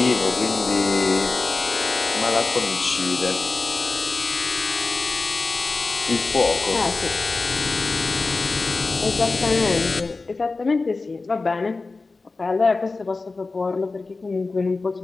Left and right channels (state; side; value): quieter; right; 3.8 dB